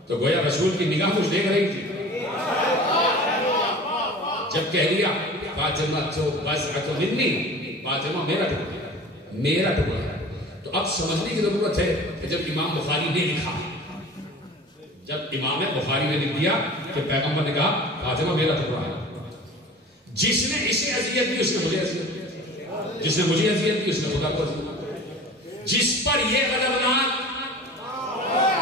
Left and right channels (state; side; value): normal; both; correlation 0.40